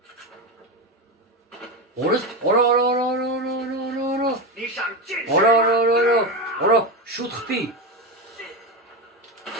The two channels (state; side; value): normal; both; correlation 0.16